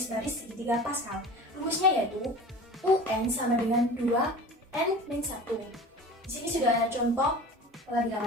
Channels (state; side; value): normal; both; correlation 0.38